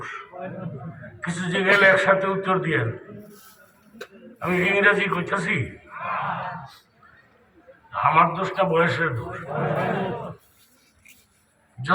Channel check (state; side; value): identical; both; correlation 1.00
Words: কিছু জায়গায় একসাথে উত্তর দিয়েন। আমি ইংরেজি কইতেছি, আমার দোষটা বয়সের দোষ।